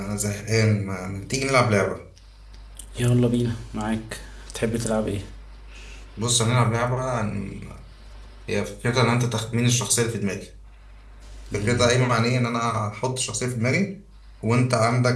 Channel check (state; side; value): identical; both; correlation 1.00